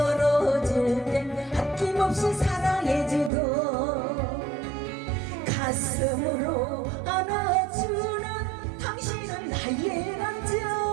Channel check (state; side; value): drops out; left; at 3.3 s